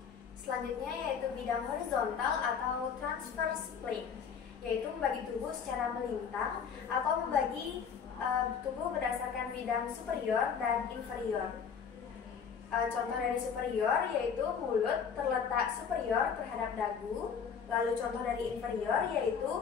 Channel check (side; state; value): right; quieter; 6.8 dB